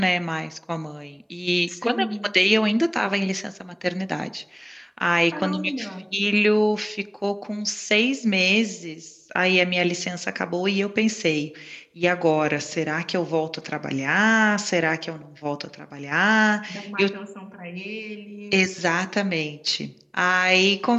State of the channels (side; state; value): both; identical; correlation 1.00